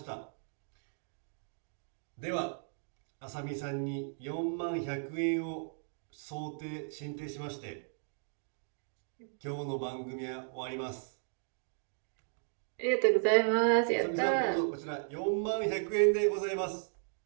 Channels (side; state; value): left; silent; digital silence